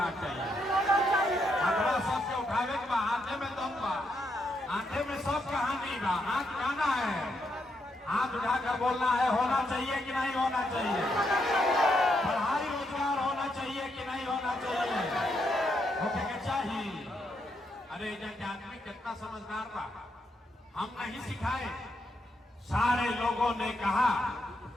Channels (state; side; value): normal; both; correlation 0.79